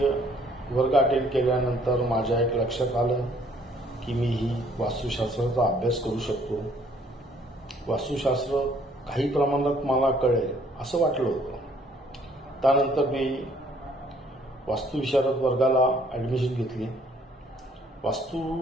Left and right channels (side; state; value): both; normal; correlation 0.62